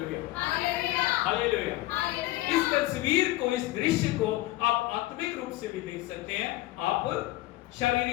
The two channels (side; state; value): right; quieter; 17.6 dB